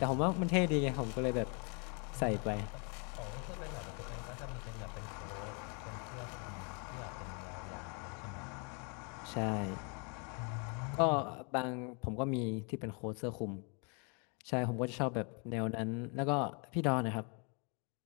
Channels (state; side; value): quieter; right; 35.9 dB